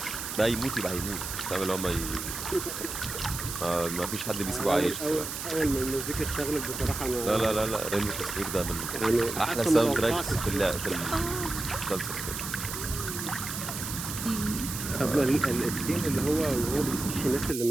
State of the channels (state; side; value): noise; right; hiss, 6 dB below the sound